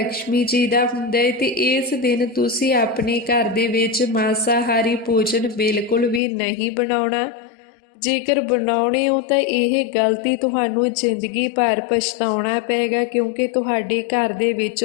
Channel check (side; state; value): right; drops out; at 6.2 s